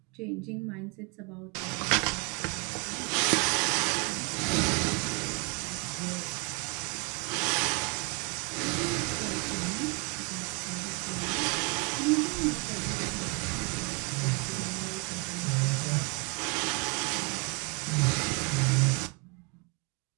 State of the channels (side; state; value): left; quieter; 32.4 dB